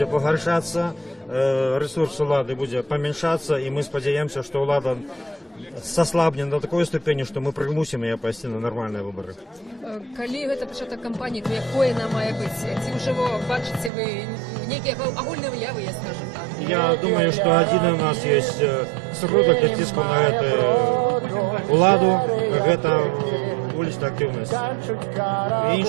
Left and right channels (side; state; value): left; drops out; at 13.9 s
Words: погоршаться, ресурс улады будет поменьшаться, и мы сподеемся, что улада сослабнет до такой ступени, что мы примусим ее пойти на нормальные выборы. Калі гэта пачатак кампаніі, то якое она мае быць? Ці ўжо бачыце вы некія агульныя выявы, я скажем так? Я думаю, что один у нас есть сродак для ціску на эту уладу, это уличная активность. И